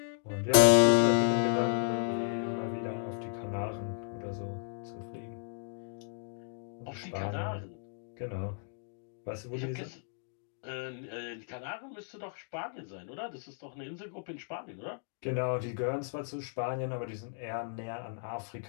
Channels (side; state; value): right; silent; digital silence